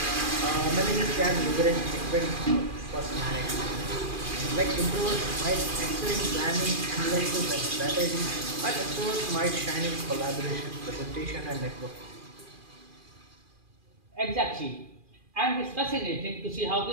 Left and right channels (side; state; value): left; late; 2.4 ms